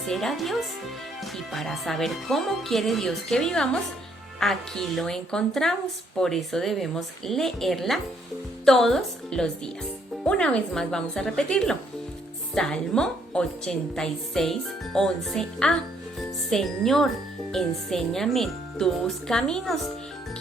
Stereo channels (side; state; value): both; normal; correlation 0.69